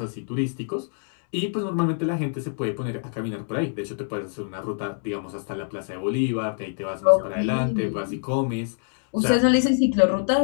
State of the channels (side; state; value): right; silent; digital silence